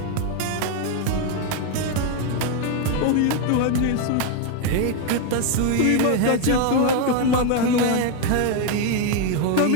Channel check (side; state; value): both; different; correlation 0.01